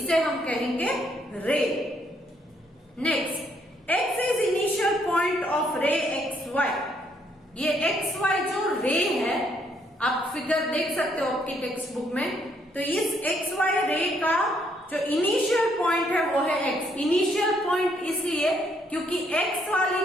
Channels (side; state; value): both; normal; correlation 0.71